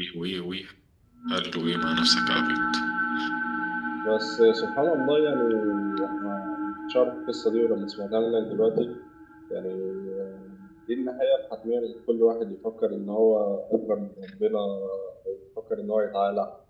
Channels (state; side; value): identical; both; correlation 1.00